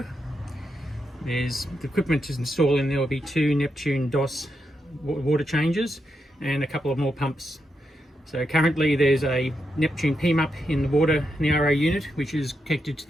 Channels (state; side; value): normal; both; correlation 0.84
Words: There's the equipment to install in there will be 2 Neptune DOS water changes and a couple of more pumps. So currently there's a Neptune PMUP in the water in the RO unit, which is connected to